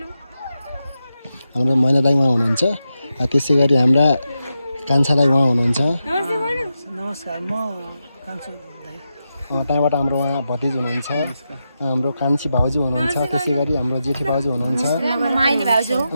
हाम्रो मैना दाइ उहाँ हुनुहुन्छ। त्यसै गरी हाम्रा कान्छा दाइ उहाँ हुनुहुन्छ। नमस्कार, म कान्छा दाइ। त्यहाँबाट हाम्रो उहाँ भतिज हुनुहुन्छ, हाम्रो कान्छी भाउजू हुनुहुन्छ। त्यसै गरी हाम्रो जेठी भाउजू हुनुहुन्छ।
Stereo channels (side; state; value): both; inverted; correlation -0.88